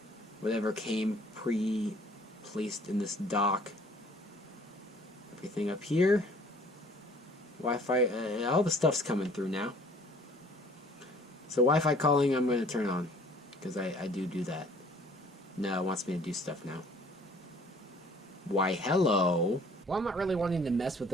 Whatever came pre-placed in this dock. Everything up here. Wi-Fi, all the stuff's coming through now. So Wi-Fi calling I'm going to turn on. Because I do that. No, it wants me to do stuff now. Why, hello. Well, I'm not really wanting to mess with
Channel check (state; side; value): normal; both; correlation 0.55